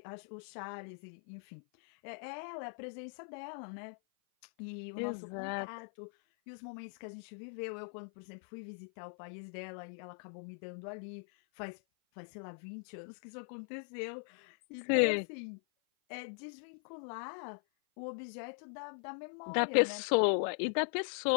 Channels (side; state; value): right; silent; 51 dB below the other